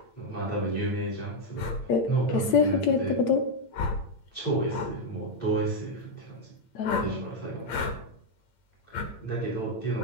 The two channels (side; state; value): right; late; 8.8 ms